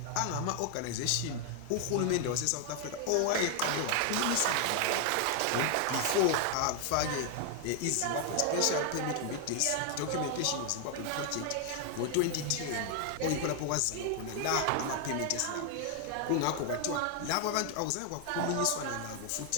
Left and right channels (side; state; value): both; different; correlation 0.00